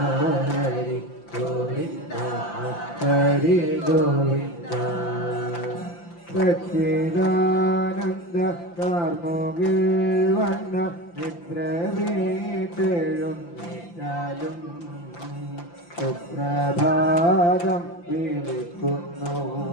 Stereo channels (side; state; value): right; late; 5.8 ms